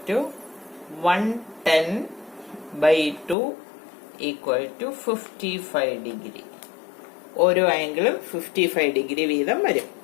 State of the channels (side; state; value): right; drops out; at 3.4 s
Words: to 110/2 equal to 55 degree. ഓരോ ആംഗിളും 55 ഡിഗ്രി വീതം വരും.